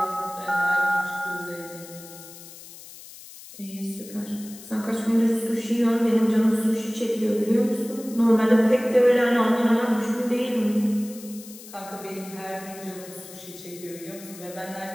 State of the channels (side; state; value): left; noise; hiss, 17 dB below the sound